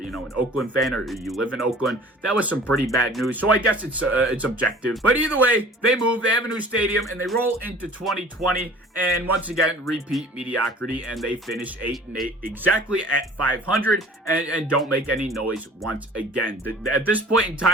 Oakland fan or you live in Oakland. That was some pretty bad news, so I guess it's objective. But either way, they move, they have a new stadium, and they roll into 2020, and once again, repeat mediocrity, and they finish 8-8, exactly at 500, and don't make any noise once again. At this point in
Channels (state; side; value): normal; both; correlation 0.47